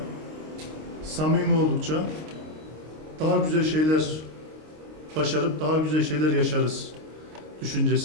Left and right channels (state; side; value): late; left; 26 ms